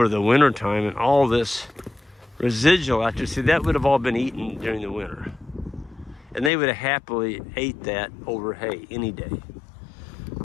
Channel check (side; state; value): right; drops out; at 6.5 s